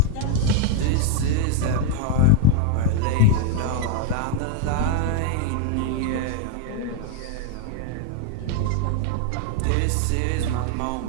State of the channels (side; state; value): both; different; correlation 0.00